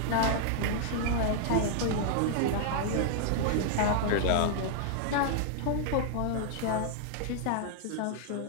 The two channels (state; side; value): different; both; correlation -0.01